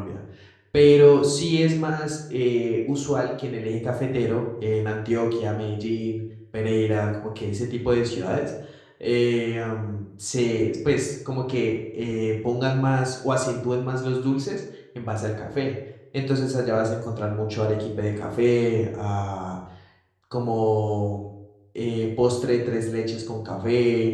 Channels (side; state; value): both; identical; correlation 1.00